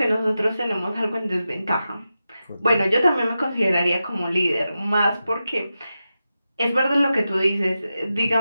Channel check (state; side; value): inverted; both; correlation -0.91